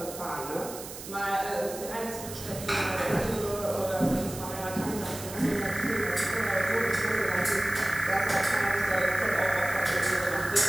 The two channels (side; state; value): right; noise; hiss, 12 dB below the sound